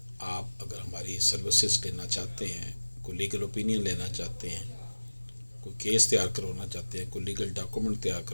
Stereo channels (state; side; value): inverted; both; correlation -1.00